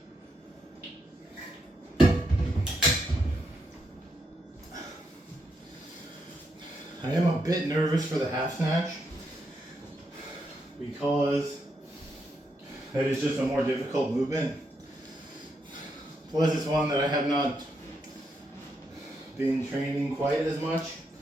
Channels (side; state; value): both; normal; correlation 0.80